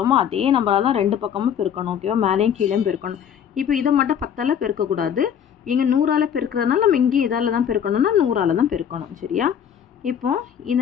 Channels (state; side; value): quieter; right; 8.6 dB